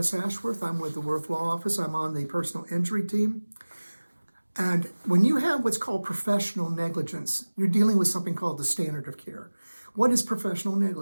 Ashworth. I'm with the Worth Law Office. I'm on the personal injury team. And when you have what's called professional negligence, you're dealing with something called the standard of care. What is professional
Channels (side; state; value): both; inverted; correlation -1.00